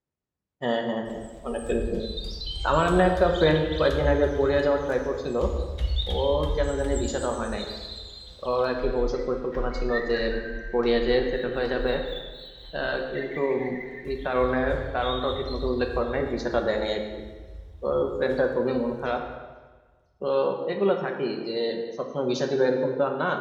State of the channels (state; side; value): identical; both; correlation 1.00